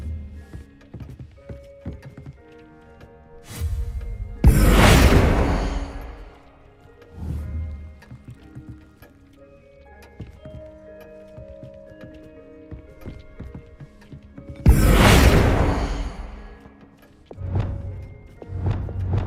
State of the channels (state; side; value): identical; both; correlation 1.00